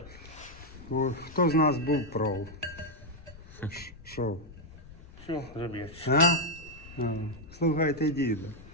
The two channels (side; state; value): left; noise; rumble, 18 dB below the sound